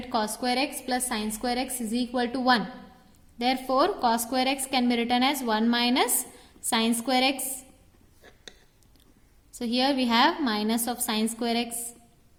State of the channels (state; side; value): identical; both; correlation 1.00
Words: cos square x plus sin square x is equal to 1. Therefore cos square x can be written as 1 minus sin square x. So here we have minus of sin square x.